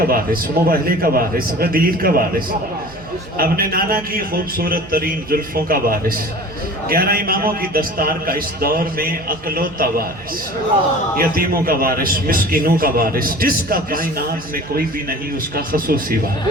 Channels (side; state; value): right; noise; hum, 20 dB below the sound